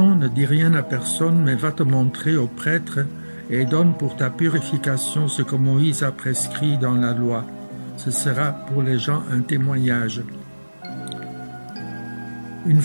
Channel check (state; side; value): inverted; both; correlation -1.00